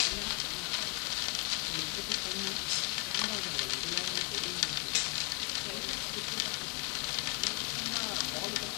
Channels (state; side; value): quieter; right; 34.3 dB